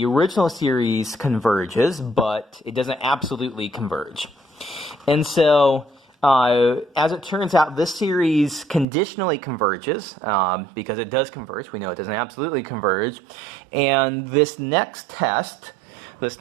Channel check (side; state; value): left; drops out; at 8.8 s